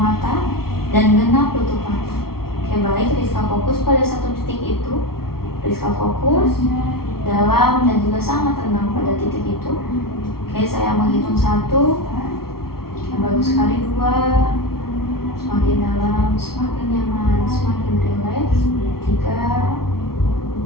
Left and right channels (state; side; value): late; right; 0.94 ms